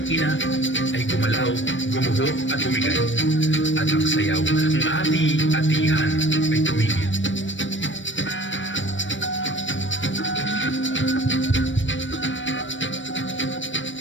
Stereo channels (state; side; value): late; right; 0.55 ms